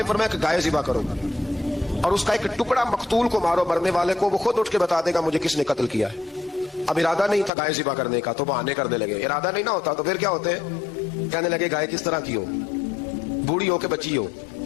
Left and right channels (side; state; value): right; drops out; at 7.5 s